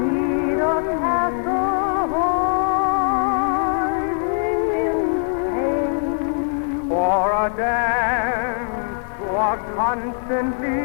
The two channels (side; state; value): right; silent; 65 dB below the other